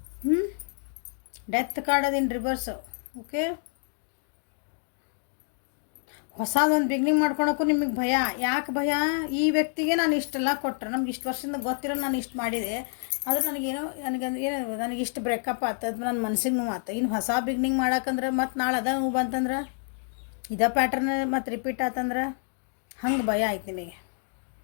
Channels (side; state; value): right; silent; 57 dB below the other